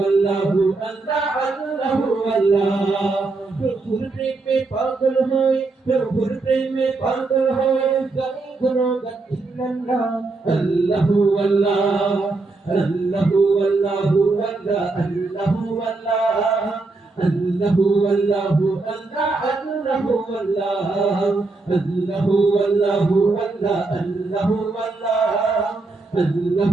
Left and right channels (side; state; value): left; quieter; 3.5 dB